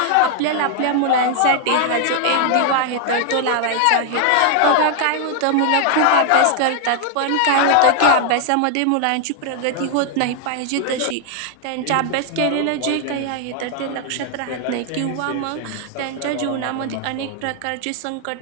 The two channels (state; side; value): different; both; correlation 0.00